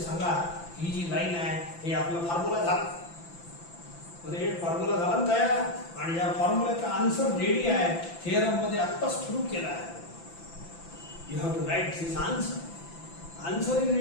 सांगा ही जी लाईन आहे हे आपला फॉर्म्युला झाला. हे फॉर्म्युला झाला ना तयार, आणि या फॉर्म्युल्याचा आन्सर रेडी आहे. थिअरम मध्ये आत्ताच प्रूव्ह केला आहे. You have to write this answer. Answer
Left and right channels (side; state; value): right; late; 5.9 ms